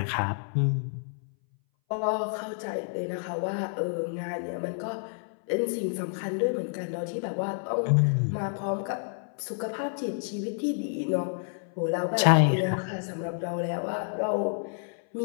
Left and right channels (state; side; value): silent; right; 58 dB below the other